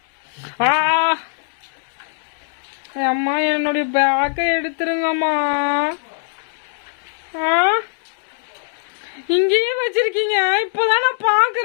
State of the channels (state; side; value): silent; right; digital silence